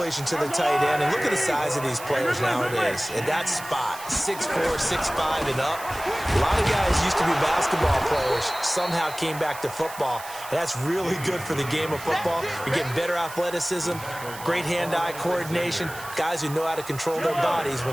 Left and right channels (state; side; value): noise; right; hiss, 14 dB below the sound